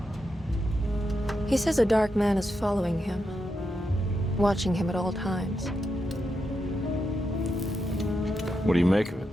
He says a dark man is following him, watching him at all times. What do you make of it?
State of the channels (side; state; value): both; normal; correlation 0.85